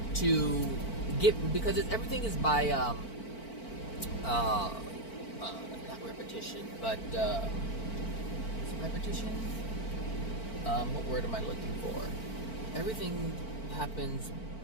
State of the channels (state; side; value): late; right; 4.5 ms